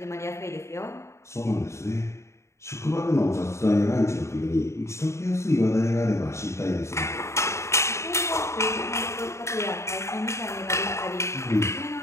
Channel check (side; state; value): right; late; 0.14 ms